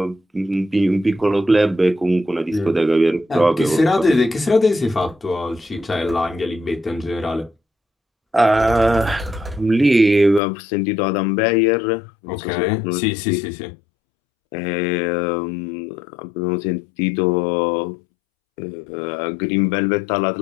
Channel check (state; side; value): drops out; right; at 10.4 s